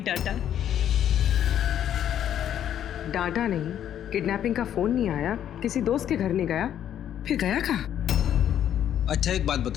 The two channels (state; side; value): quieter; right; 10.3 dB